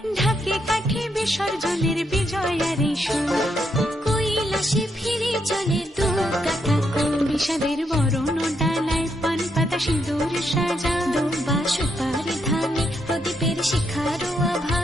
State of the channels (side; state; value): both; normal; correlation 0.78